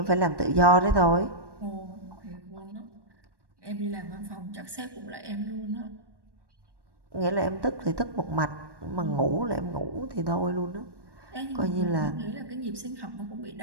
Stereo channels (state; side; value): late; left; 1.1 ms